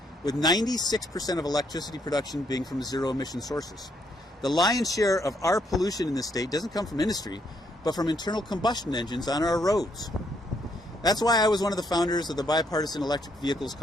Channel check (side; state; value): both; normal; correlation 0.72